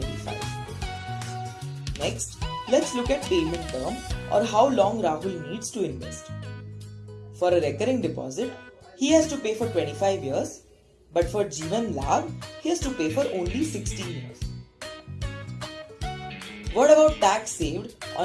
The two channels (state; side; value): identical; both; correlation 1.00